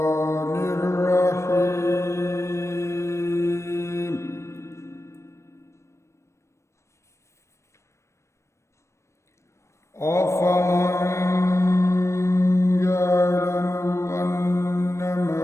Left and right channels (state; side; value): late; right; 0.13 ms